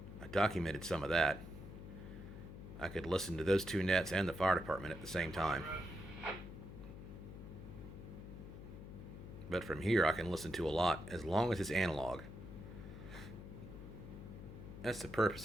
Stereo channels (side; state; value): left; noise; hum, 11 dB below the sound